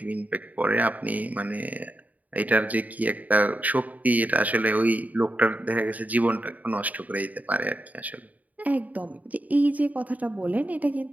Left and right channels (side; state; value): left; late; 0.074 ms